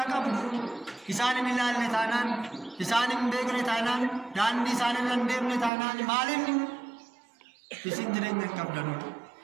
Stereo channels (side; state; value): left; drops out; at 5.7 s